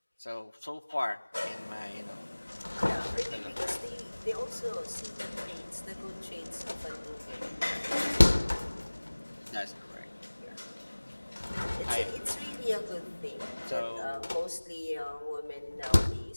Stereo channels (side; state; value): both; inverted; correlation -1.00